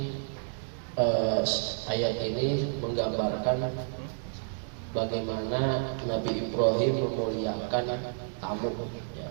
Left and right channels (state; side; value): silent; left; digital silence